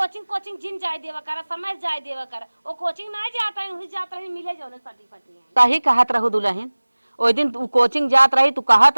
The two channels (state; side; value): inverted; both; correlation -1.00